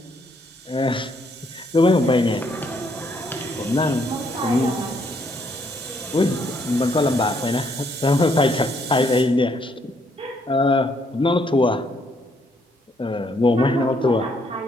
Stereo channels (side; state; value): both; normal; correlation 0.71